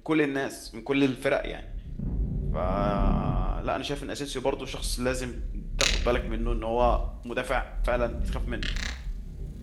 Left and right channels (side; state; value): both; identical; correlation 1.00